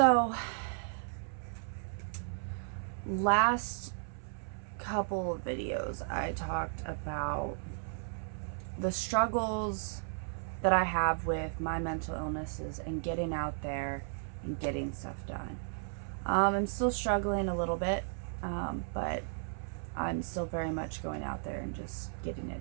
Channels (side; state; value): left; silent; 55 dB below the other